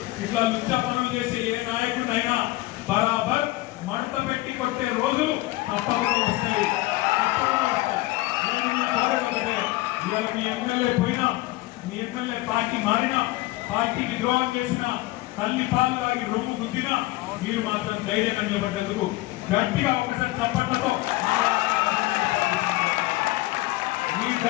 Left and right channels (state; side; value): quieter; right; 19.4 dB